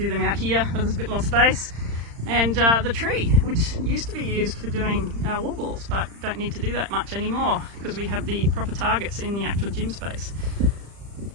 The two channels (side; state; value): left; late; 35 ms